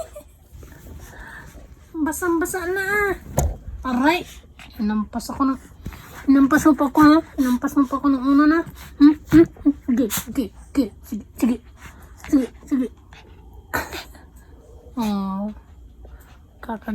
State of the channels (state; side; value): identical; both; correlation 1.00